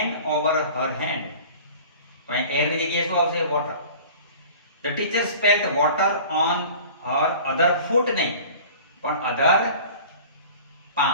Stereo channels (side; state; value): both; inverted; correlation -0.42